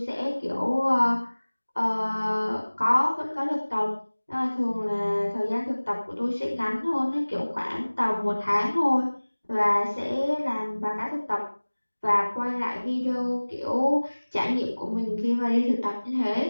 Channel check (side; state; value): both; inverted; correlation -1.00